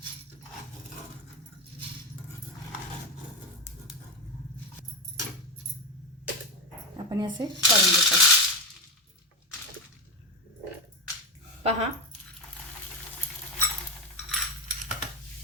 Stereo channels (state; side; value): normal; both; correlation 0.13